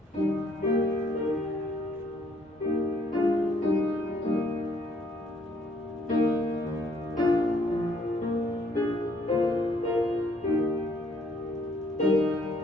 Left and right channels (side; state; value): both; normal; correlation 0.65